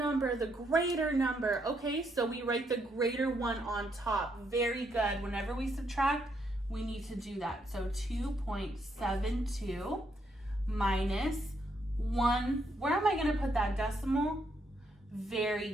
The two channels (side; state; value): both; normal; correlation 0.76